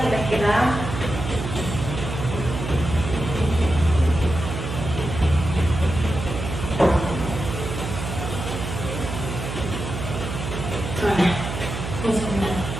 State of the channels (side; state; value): right; noise; hum, 5 dB below the sound